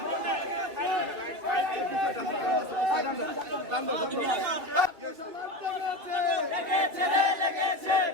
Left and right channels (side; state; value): left; late; 2.7 ms